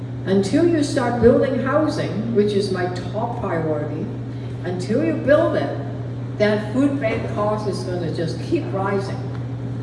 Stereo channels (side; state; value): both; identical; correlation 1.00